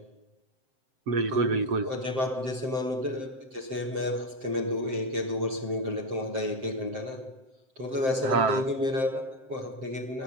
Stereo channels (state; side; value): late; left; 7.7 ms